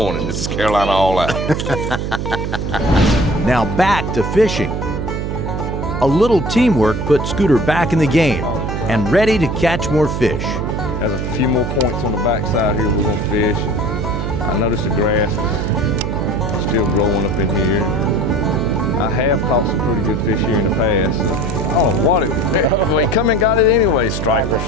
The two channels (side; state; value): right; noise; hum, 3 dB below the sound